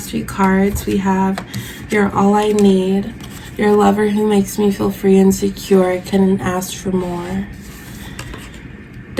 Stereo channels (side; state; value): both; identical; correlation 1.00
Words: few cards. We have You're All I Need, Your Lover Who Makes Me Feel Free and Secure, I Couldn't Ask for More.